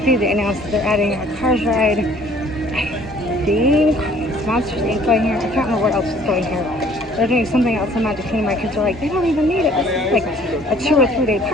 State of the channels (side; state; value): both; normal; correlation 0.56